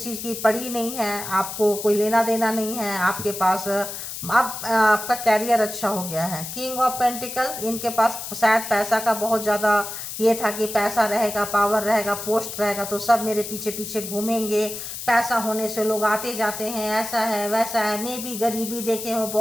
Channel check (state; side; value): noise; left; hiss, 8 dB below the sound